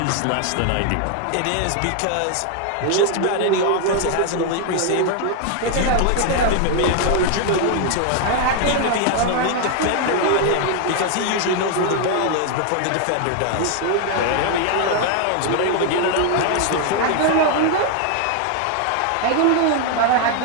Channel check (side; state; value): both; different; correlation 0.00